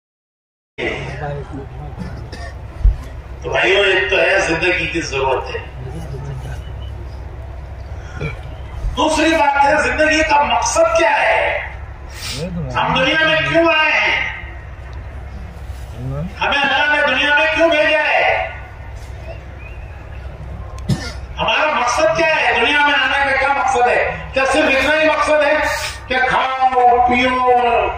تو بھائیو، ایک تو ہے زندگی کی ضرورت ہے، دوسری بات ہے زندگی کا مقصد کیا ہے، ہم دنیا میں کیوں آئے ہیں، ہمیں اللہ نے دنیا میں کیوں بھیجا ہے، ہمارا مقصد کیا ہے، دنیا میں آنے کا کیا مقصد ہے؟ کیا صرف اتنا ہی مقصد ہے کہ کھاؤ پیو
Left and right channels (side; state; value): both; identical; correlation 1.00